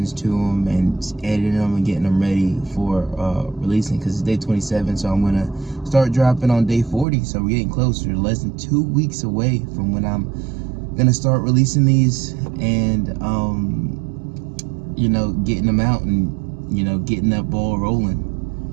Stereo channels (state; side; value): drops out; left; at 7.1 s